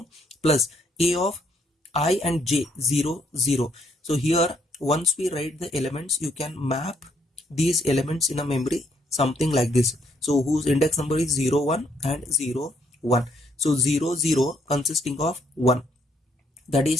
plus a of I and j 0 0. So here once we write the elements, you can map these elements in a memory something like this. So whose index number is 0 1 and 0 1. So 0 0 consisting of 1, that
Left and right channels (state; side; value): normal; both; correlation 0.70